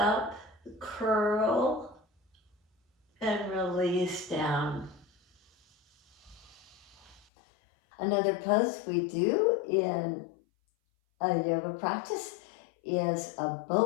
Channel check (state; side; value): drops out; right; at 7.2 s